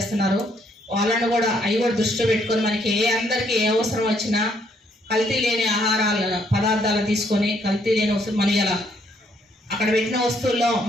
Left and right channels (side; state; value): both; normal; correlation 0.70